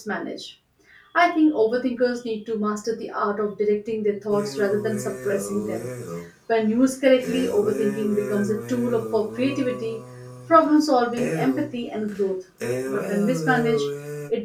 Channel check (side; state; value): both; identical; correlation 1.00